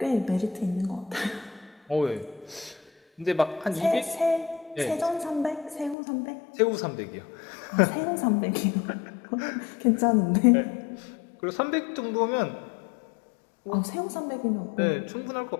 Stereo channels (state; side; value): drops out; right; at 6.0 s